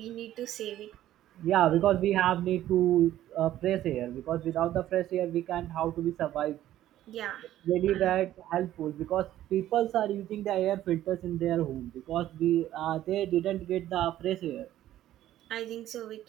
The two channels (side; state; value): left; quieter; 13.1 dB